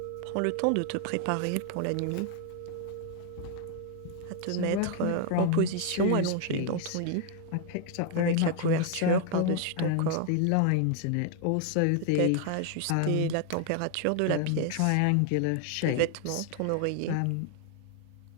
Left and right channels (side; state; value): both; different; correlation 0.00